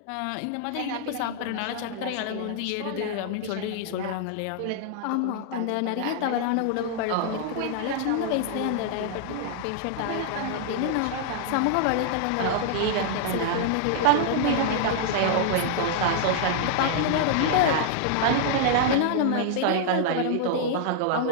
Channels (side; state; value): both; different; correlation -0.01